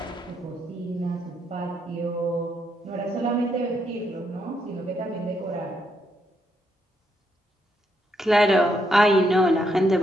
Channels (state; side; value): normal; both; correlation 0.77